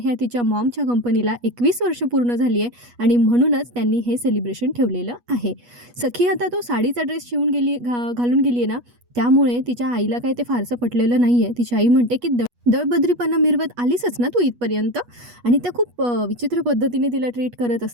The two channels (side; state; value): left; late; 8.3 ms